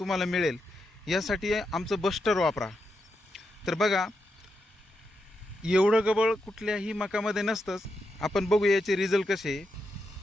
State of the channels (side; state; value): both; normal; correlation 0.85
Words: मिळेल, यासाठी आमचं बस्टर वापरा. तर बघा, एवढं गबळ कुठल्याही मकामध्ये नसतंच. आपण बघू याचे रिझल्ट कसे.